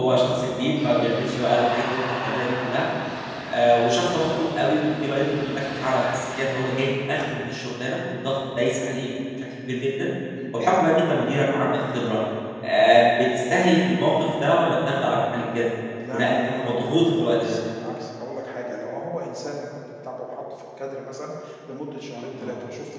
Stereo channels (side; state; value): both; identical; correlation 1.00